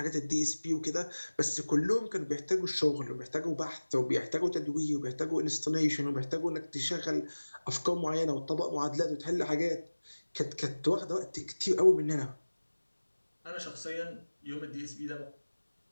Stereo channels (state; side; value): inverted; both; correlation -1.00